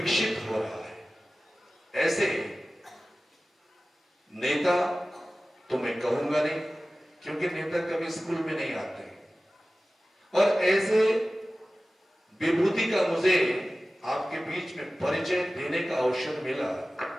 हो रहा है, ऐसे नेता तो मैं कहूंगा नहीं, क्योंकि नेता कभी स्कूल में नहीं आते, और ऐसे विभूति का मुझे आपके बीच में परिचय देने का अवसर मिला,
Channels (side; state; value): both; normal; correlation 0.96